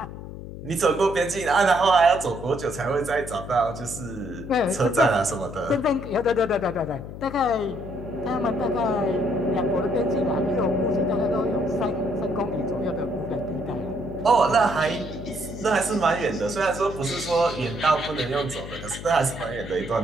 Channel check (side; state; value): left; noise; hum, 11 dB below the sound